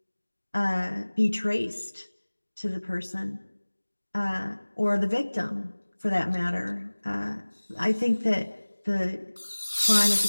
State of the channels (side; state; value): both; inverted; correlation -1.00